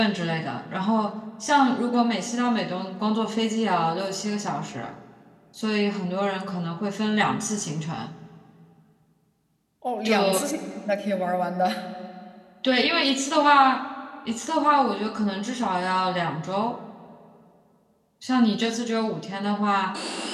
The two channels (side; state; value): both; identical; correlation 1.00